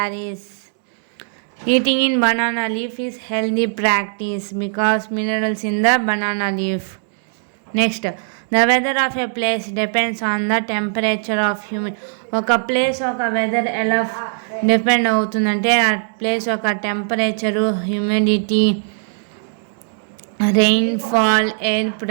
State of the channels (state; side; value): silent; left; digital silence